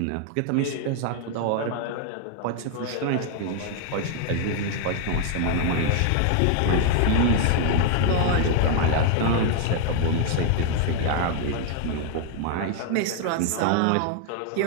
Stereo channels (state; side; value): different; both; correlation 0.00